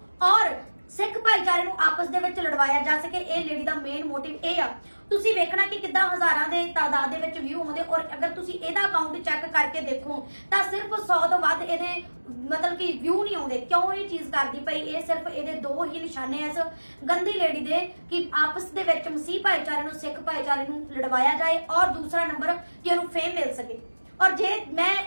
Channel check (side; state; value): both; inverted; correlation -1.00